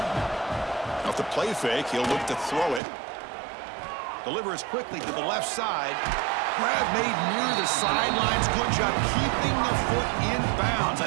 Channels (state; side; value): drops out; left; at 2.8 s